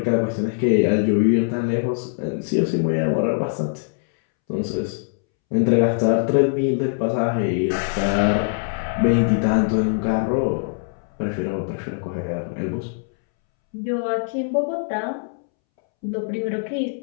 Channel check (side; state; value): right; silent; 64 dB below the other